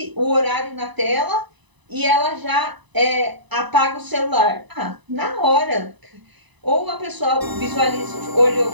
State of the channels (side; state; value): left; late; 1.0 ms